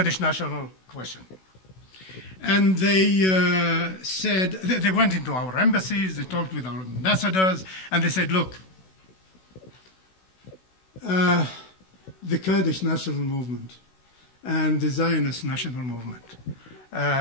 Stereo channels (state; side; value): late; right; 16 ms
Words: national question. And they said, they went into our embassies, they talked with our ambassadors, and they said, look, the Kurdish national movement and the Zionist national movement